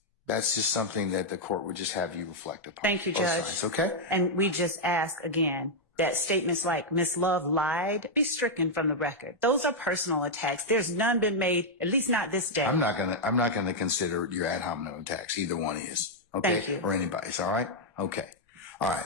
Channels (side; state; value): both; normal; correlation -0.03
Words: that's just something that the court would just have you reflect upon. Thank you, Judge. Sides, okay? And we just ask again that statements like Ms. Love lied be stricken from the record. Those are personal attacks. There's none been made, at least not this day. I'm not gonna consider your ad hominem attacks. Either one is. Okay? Thank you. Or anybody's. All right? Okay. All right.